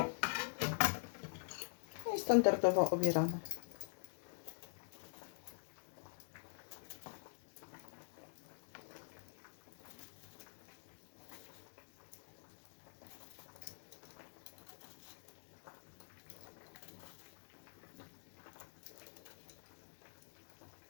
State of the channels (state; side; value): silent; right; digital silence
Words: I standardowo obieramy.